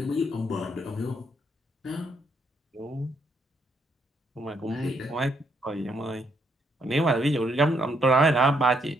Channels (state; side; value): normal; both; correlation 0.73